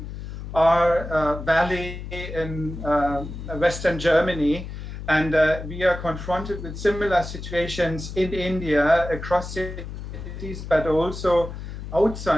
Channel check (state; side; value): noise; left; hum, 9 dB below the sound